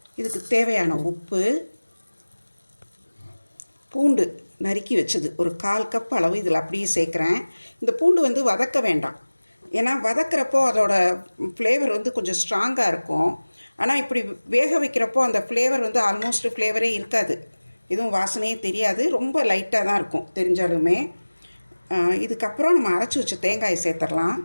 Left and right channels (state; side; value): inverted; both; correlation -1.00